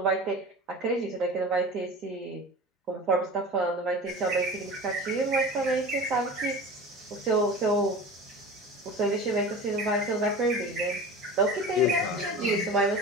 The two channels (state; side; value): normal; both; correlation 0.34